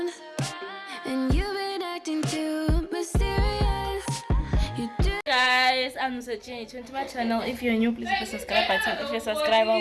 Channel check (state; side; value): identical; both; correlation 1.00